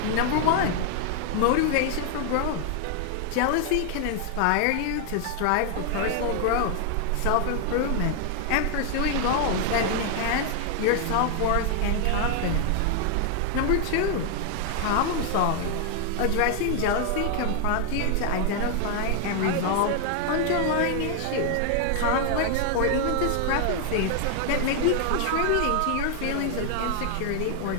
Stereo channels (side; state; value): both; different; correlation 0.00